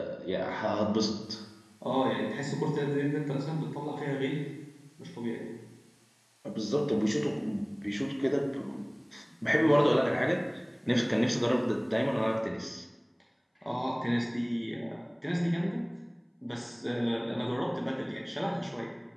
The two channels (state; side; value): identical; both; correlation 1.00